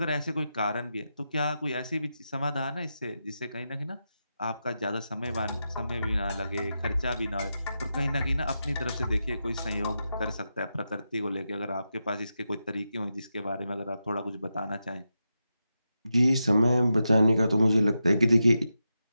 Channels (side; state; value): both; inverted; correlation -0.88